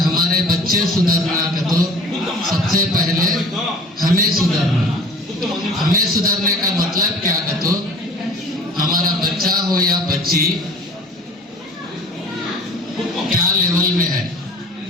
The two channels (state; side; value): normal; both; correlation 0.45